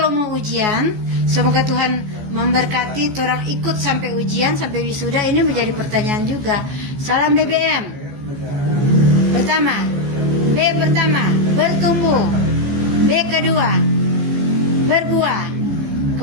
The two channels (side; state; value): left; late; 14 ms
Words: mau ujian, semoga Tuhan memberkati orang ikut sampai ujian, sampai wisuda. Ini menjadi pertanyaan juga. Salam BBM. Pertama, B pertama, bertumbuh. B kedua, berbuah.